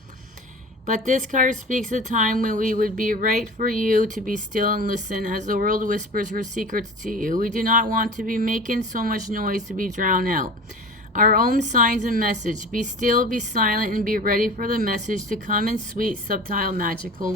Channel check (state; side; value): normal; both; correlation 0.36